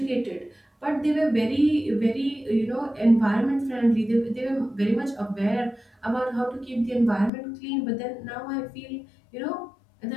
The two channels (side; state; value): right; drops out; at 7.3 s